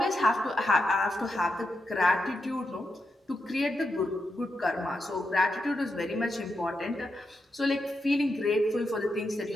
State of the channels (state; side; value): normal; both; correlation 0.86